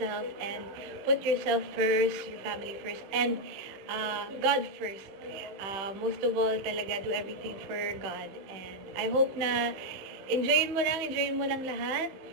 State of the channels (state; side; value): late; left; 15 ms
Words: and put yourself first, your family first, and God first. Most of all, talaga do everything for God. And I hope na enjoyin mo lang lahat.